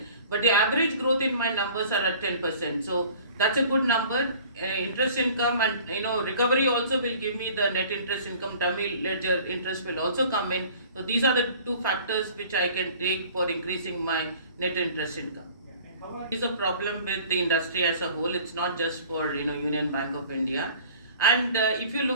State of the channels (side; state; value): both; inverted; correlation -0.48